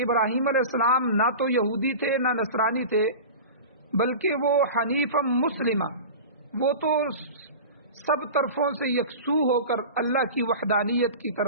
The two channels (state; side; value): inverted; both; correlation -0.32